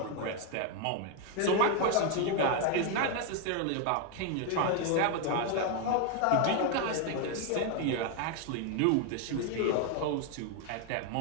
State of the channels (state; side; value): different; both; correlation 0.01